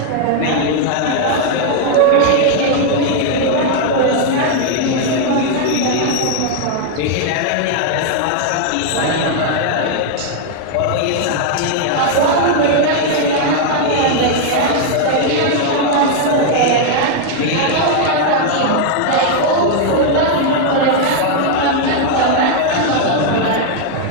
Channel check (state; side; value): different; both; correlation 0.00